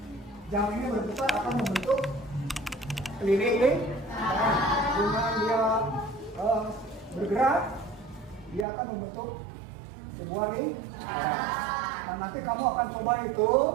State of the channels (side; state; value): left; drops out; at 8.7 s